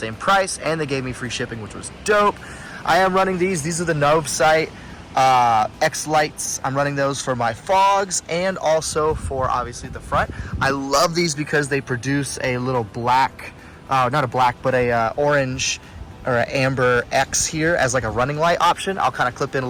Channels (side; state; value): both; identical; correlation 1.00